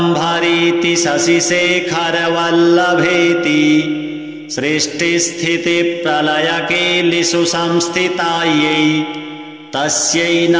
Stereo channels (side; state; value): both; identical; correlation 1.00